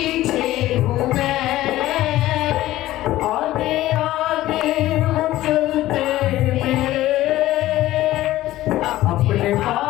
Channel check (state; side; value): quieter; right; 15.5 dB